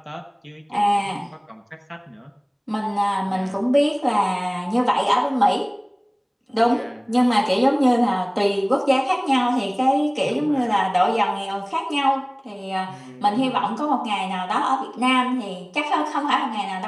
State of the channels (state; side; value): identical; both; correlation 1.00